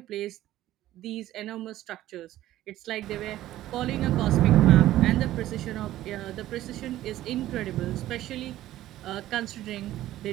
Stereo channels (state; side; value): quieter; left; 14.3 dB